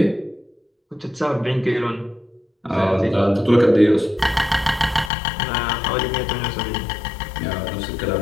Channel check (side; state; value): right; drops out; at 5.1 s